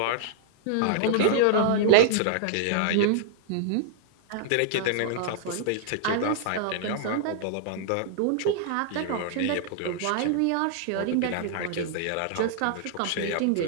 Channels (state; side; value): different; both; correlation -0.01